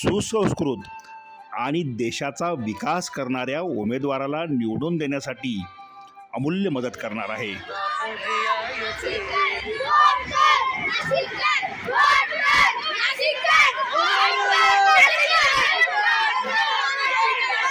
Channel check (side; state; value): both; identical; correlation 1.00